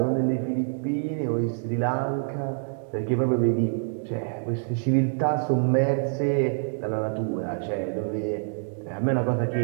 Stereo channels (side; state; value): left; silent; digital silence